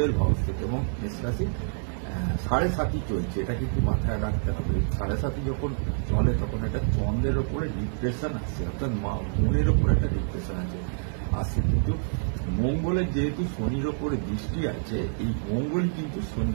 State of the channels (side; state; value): left; silent; digital silence